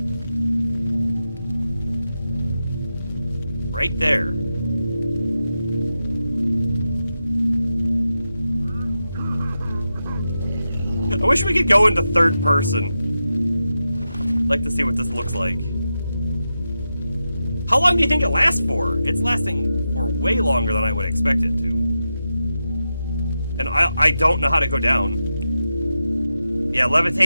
Right there. I wish we could go into third person. I'd like to see what this looks like. How long do you think it lasts for? It's lasting for way longer than I would expect it to. And I don't know how to go down. Yeah,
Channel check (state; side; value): inverted; both; correlation -0.89